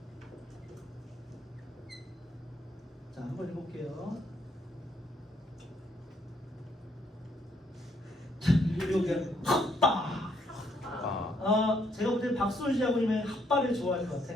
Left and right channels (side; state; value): both; normal; correlation 0.71